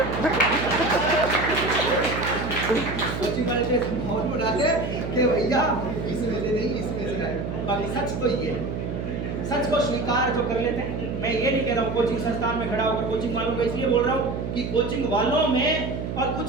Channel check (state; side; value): noise; right; hum, 4 dB below the sound